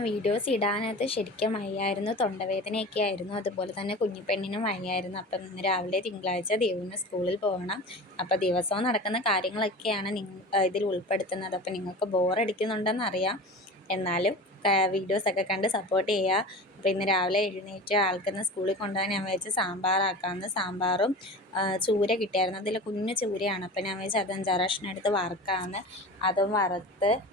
videos ഇടാനായിട്ട് ശരിക്കും വയ്യായിരുന്നു. തൊണ്ടവേദനയൊക്കെ ആയിരുന്നു. അതുപോലെ തന്നെ കുഞ്ഞിപ്പെണ്ണിനും വയ്യായിരുന്നു. അപ്പം ഇന്ന് രാവിലെ തിങ്കളാഴ്ച ദേവുവിന് സ്കൂളിൽ പോകണം. അപ്പോൾ ദിവസവും നടക്കുന്ന കാര്യങ്ങളൊക്കെയാണ് ഇതിൽ ഉൾപ്പെടുത്തുന്നത്. അപ്പം നിങ്ങൾക്ക് ബോറടിക്കുന്നുണ്ടെന്നറിയാം, എന്നാലും വീഡിയോസൊക്കെ കണ്ട് സപ്പോർട്ട് ചെയ്യുക. അപ്പോൾ ഇന്ന് രാവിലെ എഴുന്നേറ്റ് ആൾക്കിന്ന് സ്കൂളിൽ കൊണ്ടുപോകാൻ ഞാൻ വിചാരിച്ച് സാമ്പാറാക്കാമെന്ന്. സാമ്പാറും ചൂര കിട്ടിയായിരുന്നു. അതിൽ കുഞ്ഞു ചൂരയാണ്. അപ്പം ഞാൻ വിചാരിച്ചു അത് 5-6 കഷ്ണം എടുത്ത് വറുക്കാമെന്ന്. അതും വറുത്ത്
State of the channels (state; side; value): normal; both; correlation 0.34